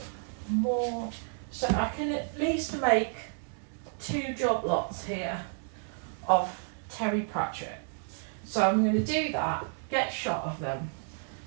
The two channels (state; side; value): silent; left; 57 dB below the other